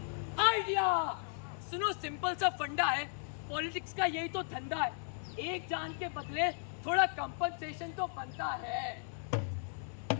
आइडिया। सुनो, सिंपल सा फंडा है, पॉलिटिक्स का यही तो धंधा है। एक जान के बदले थोड़ा कंपनसेशन तो बनता है।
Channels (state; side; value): silent; right; 54 dB below the other